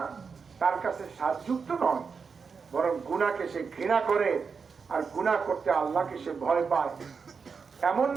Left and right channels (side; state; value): left; quieter; 5.5 dB